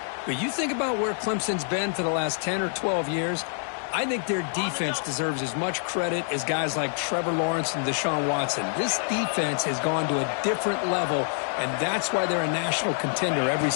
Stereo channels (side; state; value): right; silent; 58 dB below the other